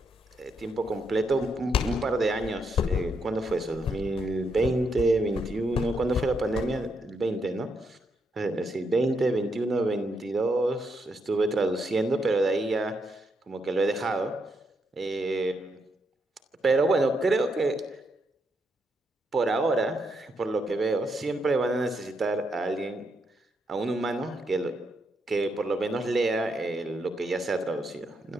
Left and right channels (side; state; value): both; normal; correlation 0.79